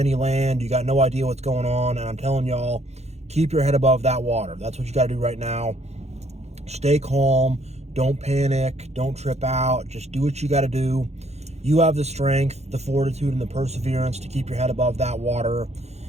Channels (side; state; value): left; late; 0.31 ms